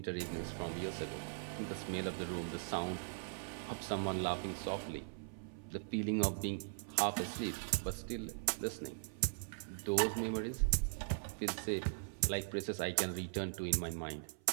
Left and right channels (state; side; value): silent; left; 51 dB below the other